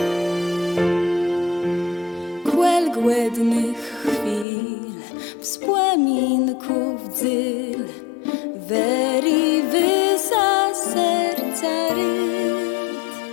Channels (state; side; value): drops out; right; at 4.5 s